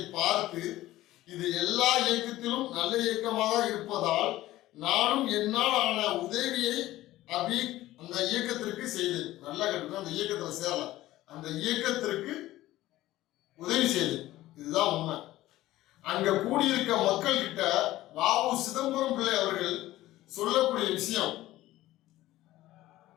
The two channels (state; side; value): quieter; right; 15.9 dB